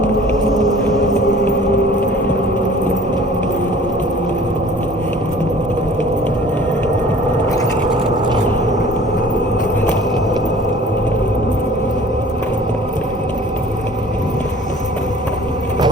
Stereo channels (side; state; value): both; normal; correlation 0.48